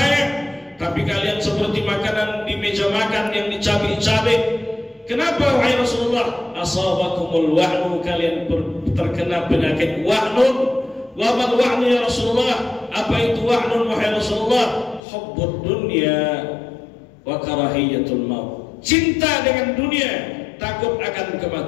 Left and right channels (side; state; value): right; drops out; at 15.0 s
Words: tapi kalian seperti makanan di meja makan yang dicabik-cabik. Kenapa wahai Rasulullah? Asabakumul wahnu, kalian terkena penyakit wahnun. Wa mal wahnu ya Rasulullah? Apa itu wahnun wahai Rasulullah? Hubbud dunya wa karahiyatul maut. Cinta dengan dunia, takut akan